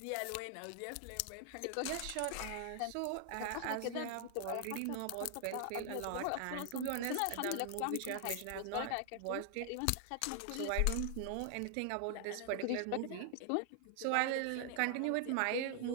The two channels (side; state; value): both; different; correlation 0.00